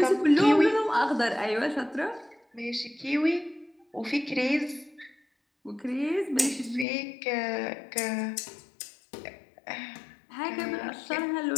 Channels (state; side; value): drops out; right; at 6.9 s